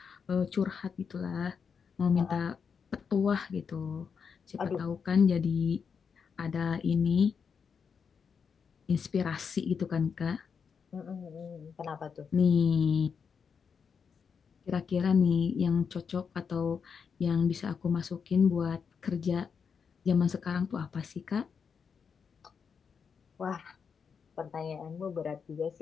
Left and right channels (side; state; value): right; quieter; 6.3 dB